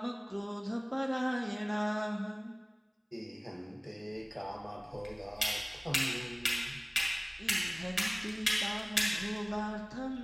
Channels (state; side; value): identical; both; correlation 1.00